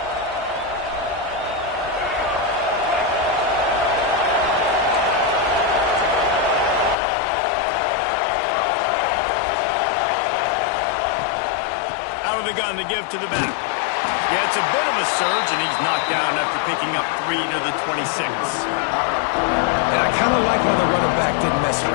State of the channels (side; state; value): right; drops out; at 7.0 s